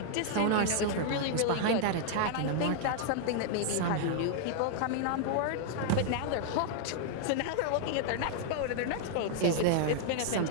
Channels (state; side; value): different; both; correlation 0.00